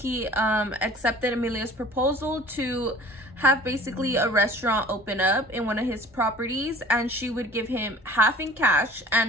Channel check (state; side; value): normal; both; correlation 0.46